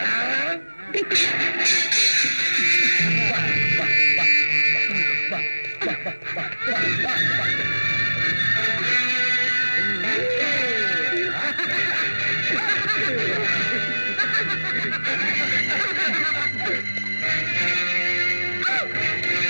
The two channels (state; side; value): inverted; both; correlation -1.00